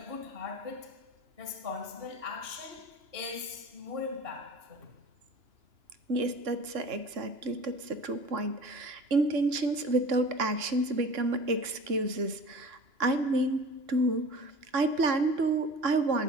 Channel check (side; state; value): left; late; 2.9 ms